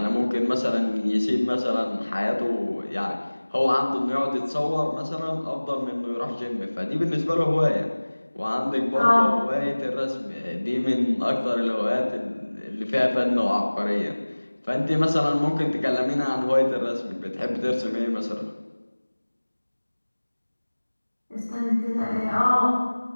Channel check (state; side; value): inverted; both; correlation -1.00